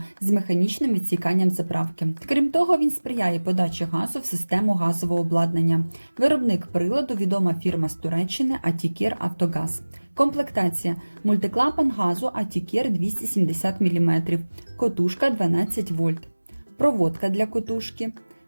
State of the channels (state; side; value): inverted; both; correlation -1.00